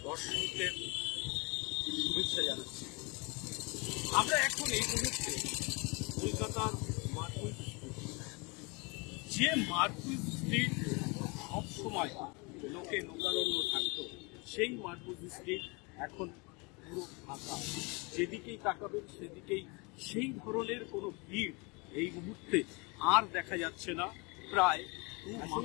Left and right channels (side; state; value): right; quieter; 29.3 dB